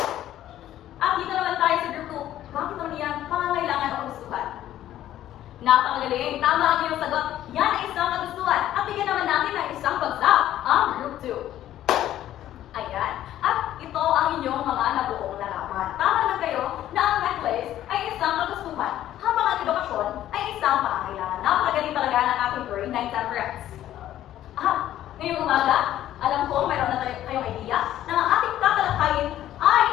At dito naman tayo sa group 2. Bakit naman yan pangangailangan o kagustuhan? Napakagaling. Tama ang iyong sagot. Yan ay isang kagustuhan. At bigyan naman natin ng isang bagsak ang group 2. Ayan. At ito ang inyong mga nabuong larawan. Tama naman kayo na ang necklace ay isang kagustuhan, habang ang edukasyon ay isang pangangailangan. Napakagaling talaga ng ating grade 9 temperance. Ngayong umaga, alam ko mayroon na kayong idea na ang ating tatalakayin ay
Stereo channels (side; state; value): right; quieter; 12.6 dB